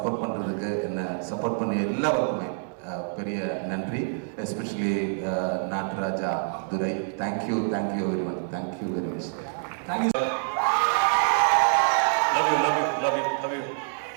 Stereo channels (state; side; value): silent; left; 61 dB below the other